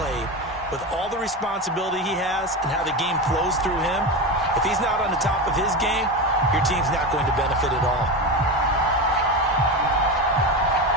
with all the responsibility he has and how the game flows through him, if he's not on the top of his game, your team's not going to benefit at all.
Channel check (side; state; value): both; normal; correlation 0.20